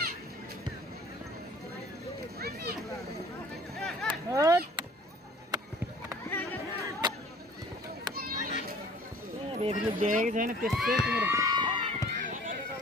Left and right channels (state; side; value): normal; both; correlation 0.51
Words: रेफरीले देखेको छैन त्यस्तै तिम्रो